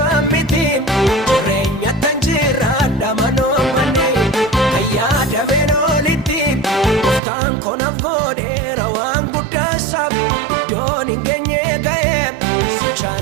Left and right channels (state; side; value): drops out; left; at 7.2 s